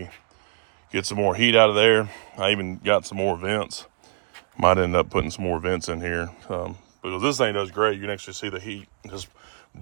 get some more heat out of there. I even got some more vents. Might end up putting some more vents in here because this thing does great. You can actually see the heat just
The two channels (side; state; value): left; silent; digital silence